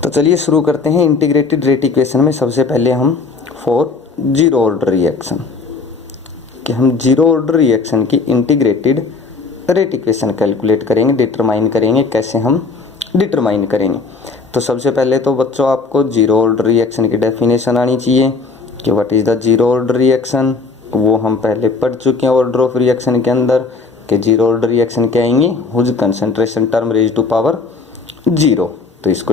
तो चलिए शुरू करते हैं। इंटीग्रेटेड रेट इक्वेशन में सबसे पहले हम फॉर जीरो ऑर्डर रिएक्शन कि हम जीरो ऑर्डर रिएक्शन की इंटीग्रेटेड रेट इक्वेशन कैलकुलेट करेंगे, डिटरमाइन करेंगे। कैसे हम डिटरमाइन करेंगे? तो सबसे पहले तो बच्चों आपको जीरो ऑर्डर रिएक्शन की डेफिनेशन आनी चाहिए कि what is the zero order reaction. वो हम पहले पढ़ चुके हैं ऑर्डर ऑफ रिएक्शन के अंदर कि जीरो ऑर्डर रिएक्शन क्या आएंगे, whose concentration term raise to power zero. तो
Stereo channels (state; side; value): quieter; right; 4.4 dB